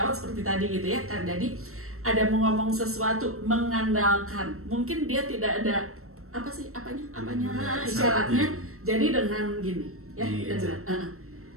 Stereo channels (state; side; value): late; left; 0.63 ms